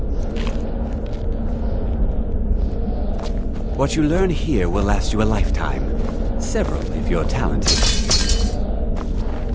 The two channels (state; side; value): identical; both; correlation 1.00